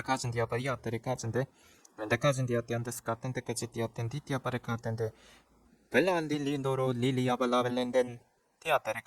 디아바리 아테리카진데 멘데카진 디아테안데스 카텐 데까지 디아텐 디티아바레 카텐데 벨란 릴리노로 릴리아발라벨렌덴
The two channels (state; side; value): identical; both; correlation 1.00